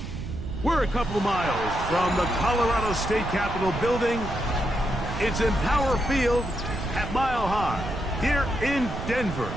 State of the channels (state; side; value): noise; right; rumble, 7 dB below the sound